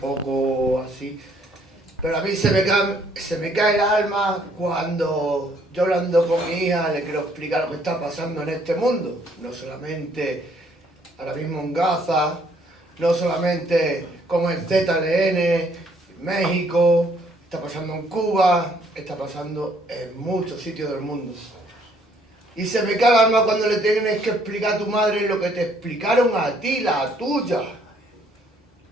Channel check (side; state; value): both; normal; correlation 0.65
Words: así, pero a mí se me cae el alma cuando yo hablando con mi hija le quiero explicar lo que está pasando en este mundo. No solamente ahora mismo en Gaza, no solamente como en ZLN, México, está pasando en Cuba, está pasando en muchos sitios del mundo. Y se me cae el alma cuando le tienes que explicar a tu madre lo que te explicaron a ti, la tuya.